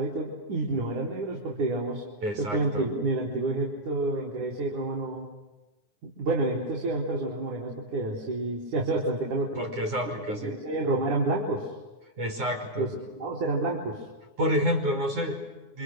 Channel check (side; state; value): left; late; 9.7 ms